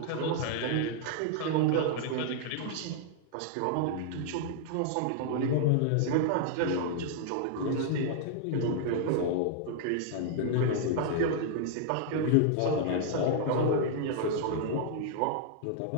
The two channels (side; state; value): both; different; correlation -0.01